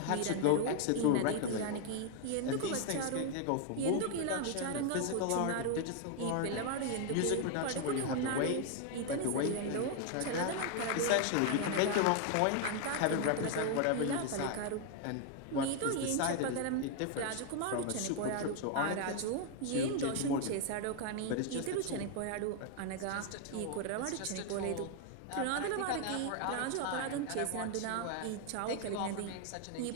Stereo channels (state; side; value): different; both; correlation 0.00